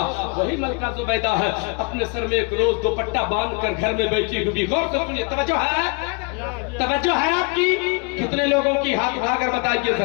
وہی ملکہ زبیدہ ہے، اپنے سر میں ایک روز دوپٹہ باندھ کر گھر میں بیٹھی ہوئی۔ غور سے سنیے، توجہ ہے آپ کی؟ کتنے لوگوں کی ہاتھ اٹھا کر بتائیے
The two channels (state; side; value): quieter; right; 32.8 dB